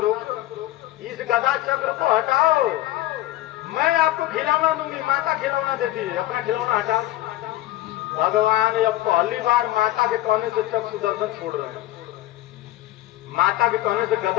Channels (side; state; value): right; quieter; 15.7 dB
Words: इस गदा चक्र को हटाओ, मैं आपको खिलौना दूंगी। माता खिलौना देती है, अपना खिलौना हटाओ। भगवान अब पहली बार माता के कहने से चक्र सुदर्शन छोड़ रहे हैं, माता के कहने से